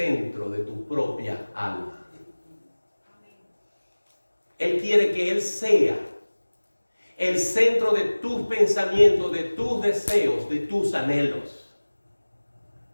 de tu propia alma. Él quiere que Él sea el centro de tus pensamientos, de tus deseos, de tus anhelos.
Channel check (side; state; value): both; inverted; correlation -1.00